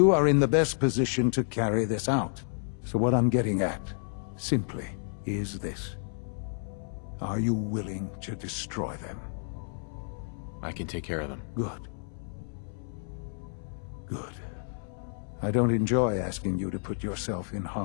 are in the best position to carry this out. So what I'm getting at, simply, is this. Are you willing to destroy them? I can take care of them. Good. Good. I don't enjoy asking you to put yourself in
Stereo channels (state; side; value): silent; right; 58 dB below the other